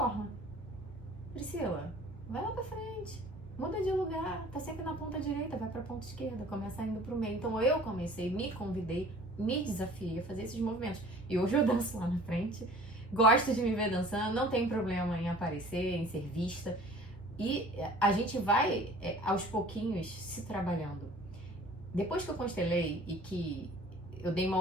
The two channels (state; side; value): normal; both; correlation 0.48